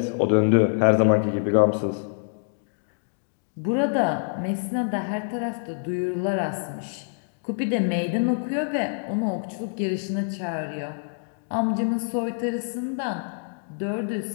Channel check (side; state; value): right; silent; digital silence